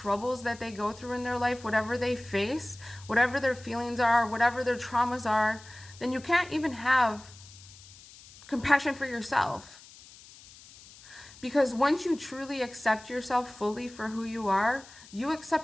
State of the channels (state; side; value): noise; left; hiss, 21 dB below the sound